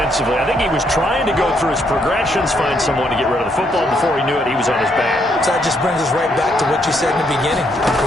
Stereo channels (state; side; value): normal; both; correlation 0.73